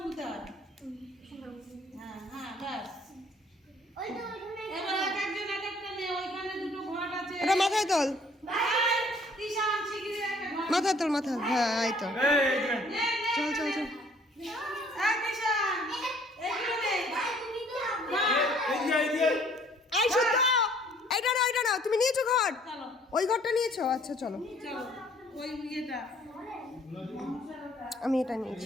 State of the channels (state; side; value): normal; both; correlation 0.58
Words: হয়। হ্যাঁ হ্যাঁ ব্যাস। ওই তো ওখানে এবার এক একজন এক একটা নে, ওইখানে দুটো ঘট আছে। এটা মাথায় তোল, এই, তিশান শিগগিরই একটা ঘট মাথায় তোল, মাথায়। হ্যাঁ এই তো, এই যে নে, নে। চল চল চল। এই তিশান, এইগুলো নে। এই যে এই শুদ্ধ, এইটা না, তুমি নিয়েছো ঘর? চলো ওই ঘরটা নিয়েছো? আচ্ছা চলো, চলো ওই ইয়েটা আমি এটা